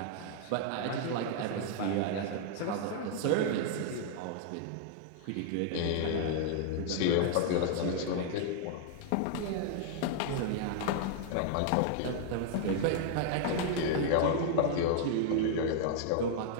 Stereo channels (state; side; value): different; both; correlation 0.00